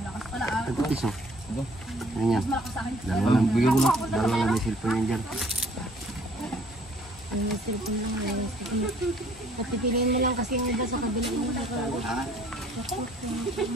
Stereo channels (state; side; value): normal; both; correlation 0.59